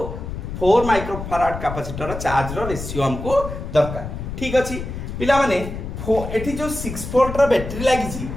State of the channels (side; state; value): left; noise; rumble, 7 dB below the sound